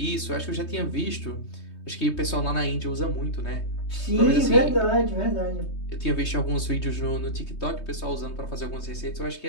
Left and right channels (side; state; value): right; late; 3.2 ms